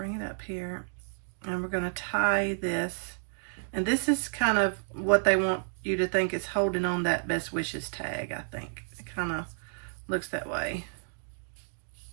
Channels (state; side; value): silent; left; digital silence